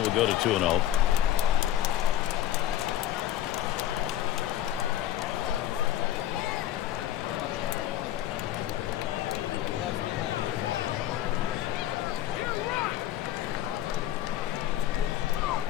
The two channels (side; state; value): right; quieter; 12.1 dB